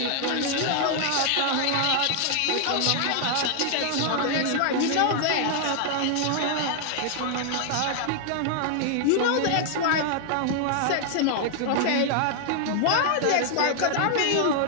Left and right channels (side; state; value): both; different; correlation -0.01